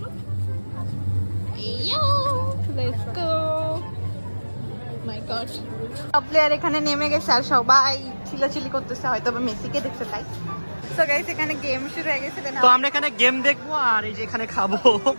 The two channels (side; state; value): both; inverted; correlation -1.00